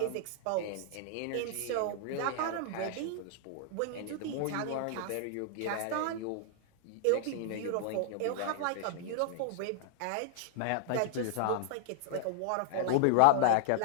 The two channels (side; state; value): both; different; correlation -0.01